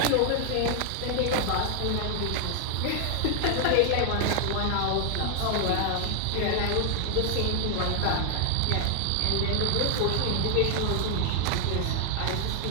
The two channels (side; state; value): both; different; correlation 0.00